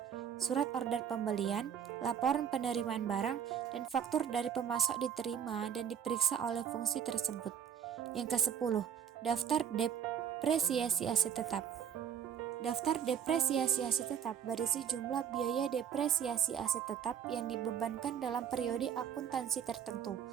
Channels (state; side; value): quieter; left; 8.4 dB